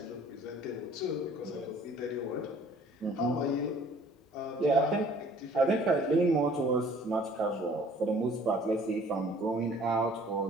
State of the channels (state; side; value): normal; both; correlation 0.54